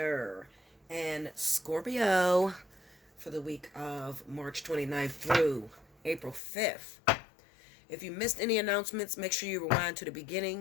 and Scorpio for the week of March 29th through April 5th. If you missed any announcements, make sure you rewind to the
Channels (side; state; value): right; drops out; at 6.4 s